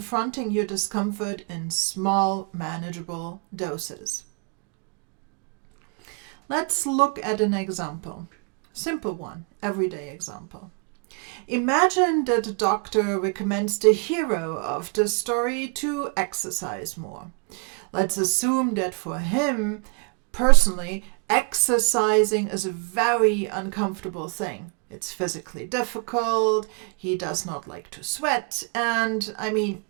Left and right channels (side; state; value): left; quieter; 34.1 dB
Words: your discomfort in small, manageable doses. Let's look at an example. Simple one, everyday example. Imagine that a doctor recommends the hero of the story to exercise more. Let's assume that for him, personally, exercising is a very uncomfortable thing. It's physically difficult, he does not like to sweat, and